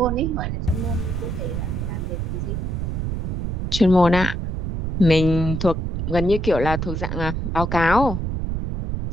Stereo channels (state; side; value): noise; right; rumble, 2 dB below the sound